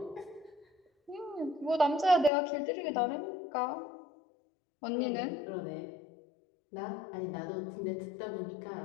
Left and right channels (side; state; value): right; drops out; at 2.3 s